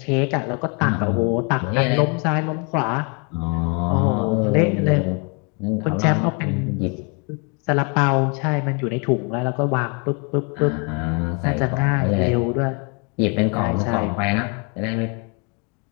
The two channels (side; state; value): right; quieter; 34.4 dB